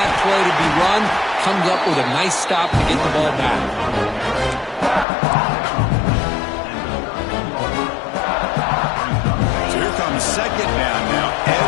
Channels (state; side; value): drops out; right; at 5.1 s